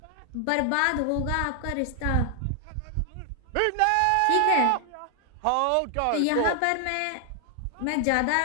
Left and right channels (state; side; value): different; both; correlation 0.00